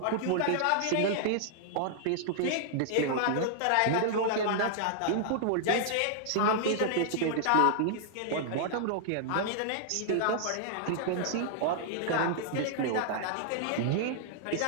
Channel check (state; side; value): different; both; correlation -0.01